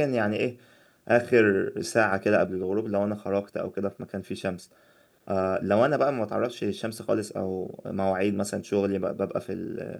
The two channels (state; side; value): identical; both; correlation 1.00